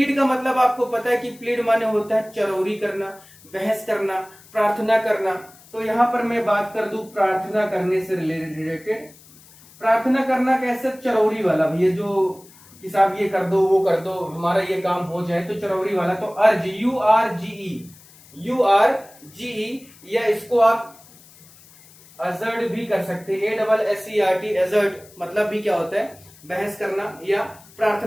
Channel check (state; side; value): noise; left; hiss, 24 dB below the sound